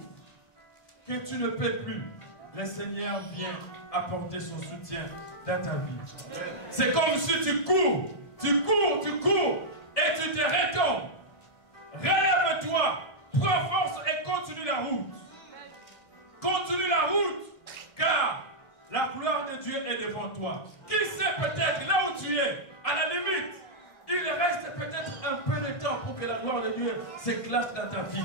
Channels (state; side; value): late; right; 1.6 ms